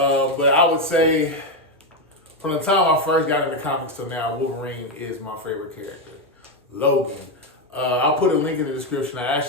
I would say from the time I first got into comics till now, Wolverine is my favorite character. Logan. I'll put a link in the description. I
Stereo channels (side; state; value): both; normal; correlation 0.07